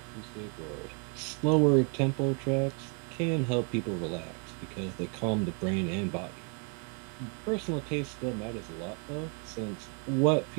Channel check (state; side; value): quieter; left; 37.8 dB